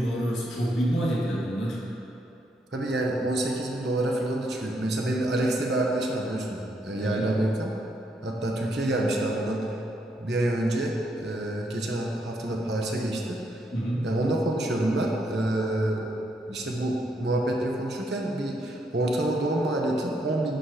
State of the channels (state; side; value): normal; both; correlation 0.75